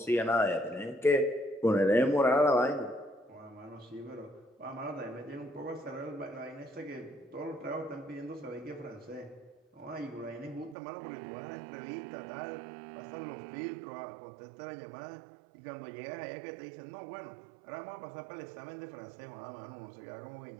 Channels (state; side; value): drops out; left; at 10.8 s